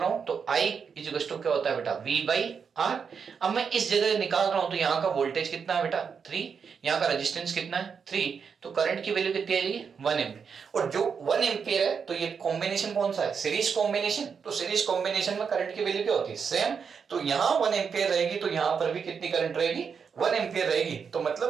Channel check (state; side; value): quieter; left; 6.3 dB